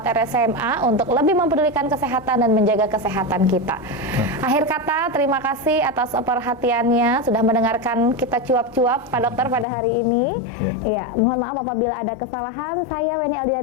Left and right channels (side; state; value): right; drops out; at 9.7 s